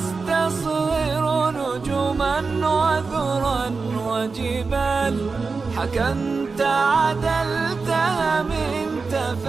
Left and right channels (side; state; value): left; quieter; 4.5 dB